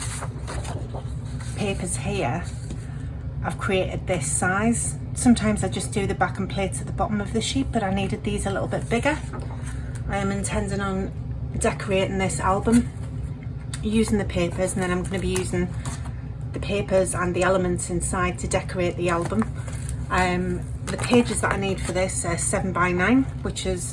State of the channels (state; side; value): identical; both; correlation 1.00